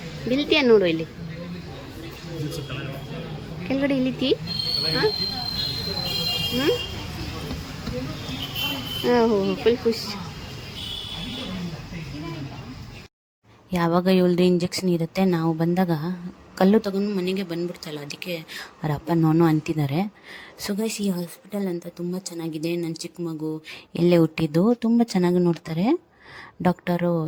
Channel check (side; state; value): both; identical; correlation 1.00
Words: ಬಿಲ್ತೀಯ ನೋಡು, ಇಲ್ಲಿ ಕೆಳಗಡೆ ಇಳಿತಿ. ಹಾಂ ಫುಲ್ ಖುಷಿ. ಯಾವಾಗ ಇವಳ್ದು ಇಂಜೆಕ್ಷನ್ ಇರುತ್ತೆ, ನಾವು ಬಂದಾಗ ಕಲ್ಲು ತಗೊಂಡು ಮನೆಗೆ ಬಂದ್ಬಿಡ್ತಲ್ಲ, ಅದಕ್ಕೆ ಅವ್ರ ಅಪ್ಪ ನೋನು ಅಂತಿದ್ದಾರೆ. ಸೊ ಗೈಸ್, ಈ ಹಾಸ್ಪಿಟಲ್ ಅಂತ ತುಂಬ ಚೆನ್ನಾಗಿದೆ. ನನ್ನ ಚಿಕ್ಕ ಮಗು ಎಲ್ಲೇ ಹುಟ್ಟಿದ್ದು, ತುಂಬ ಚೆನ್ನಾಗಿ ನೋಡ್ತಾರೆ. ಡಾಕ್ಟರು